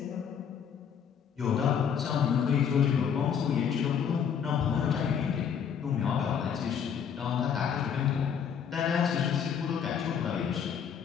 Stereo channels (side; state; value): right; quieter; 7.7 dB